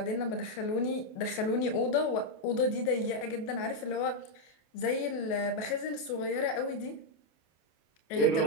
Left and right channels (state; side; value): late; right; 28 ms